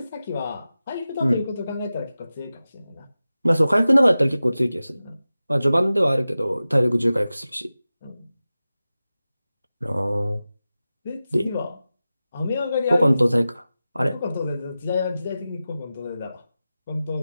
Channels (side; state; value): both; inverted; correlation -0.95